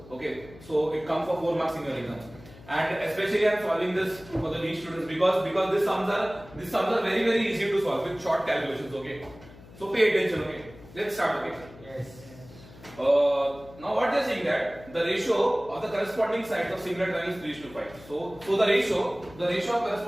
Okay, so it comes for 4 marks in your exams. And especially I am solving this for the weak students because these sums are very easy to solve with short calculations. Okay, so pay attention. Okay, let's start. Okay. Yes. Now what they are saying that the ratio of the corresponding sides of similar triangles is 3:5. So the ratio of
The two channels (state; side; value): noise; left; hum, 20 dB below the sound